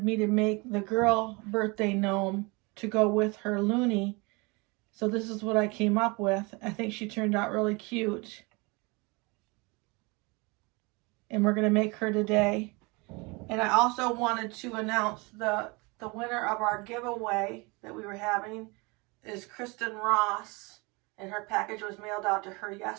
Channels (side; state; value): left; quieter; 27.3 dB